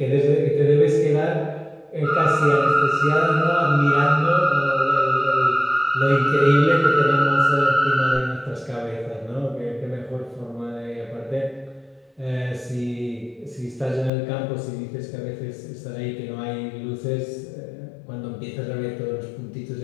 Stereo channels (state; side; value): drops out; right; at 14.1 s